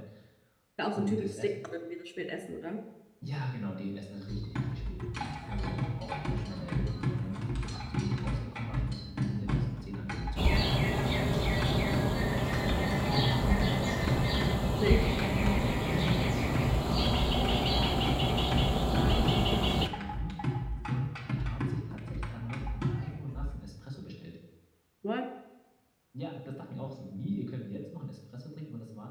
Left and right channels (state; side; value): identical; both; correlation 1.00